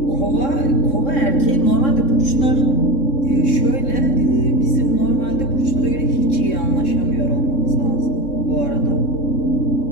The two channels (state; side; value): late; right; 3.7 ms